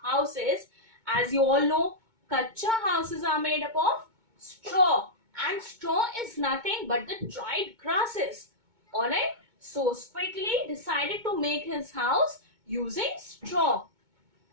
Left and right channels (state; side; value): late; left; 2.2 ms